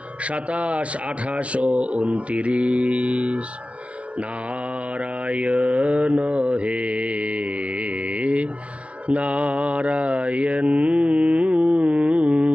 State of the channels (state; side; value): late; left; 0.064 ms